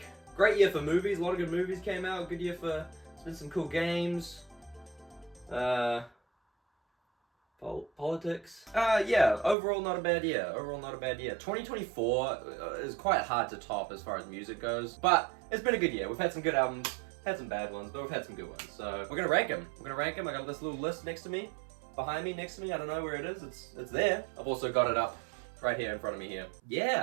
Great year for movies. A lot of good movies came out. Good year for... There's been some cool games. Politics. Yeah, overall not a bad year. Overall not a bad year. 2024 is quite hard to top as far as music goes, but it's been a good year. We've had some good albums, had some bad ones, but we've had some good ones. So we're gonna rank them. We're gonna rank them. I got this little list next to me, behind me, next to me. I don't know where it is. It's there. I've also got it up right here in front of me here.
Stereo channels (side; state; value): left; drops out; at 9.6 s